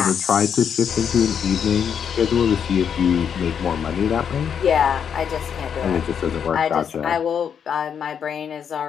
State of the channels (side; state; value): right; quieter; 7.7 dB